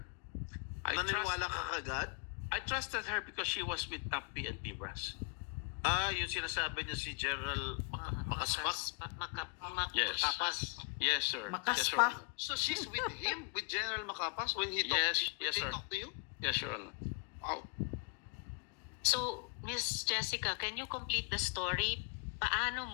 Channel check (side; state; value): right; quieter; 34.0 dB